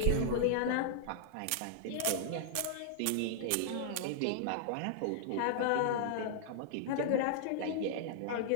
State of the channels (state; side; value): different; both; correlation -0.01